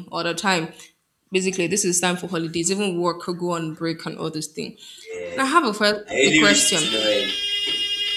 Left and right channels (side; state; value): both; identical; correlation 1.00